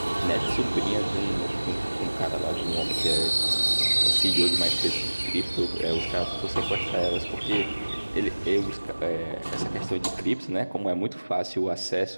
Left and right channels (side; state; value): both; inverted; correlation -1.00